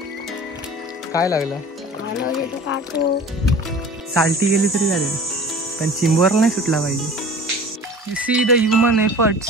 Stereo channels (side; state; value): both; normal; correlation 0.42